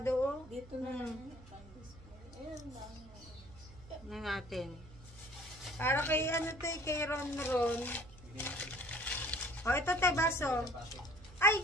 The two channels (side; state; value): right; noise; hum, 20 dB below the sound